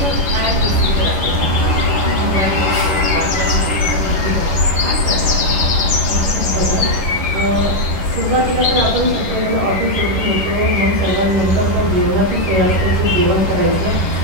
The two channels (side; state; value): left; late; 11 ms